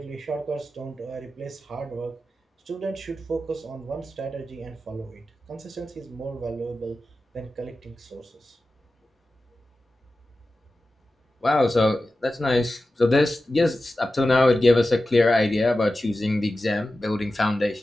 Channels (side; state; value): both; normal; correlation 0.94